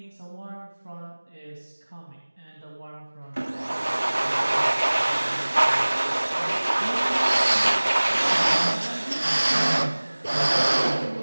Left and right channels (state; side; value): inverted; both; correlation -1.00